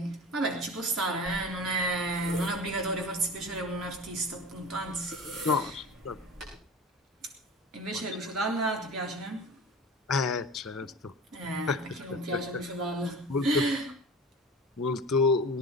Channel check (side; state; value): both; normal; correlation 0.34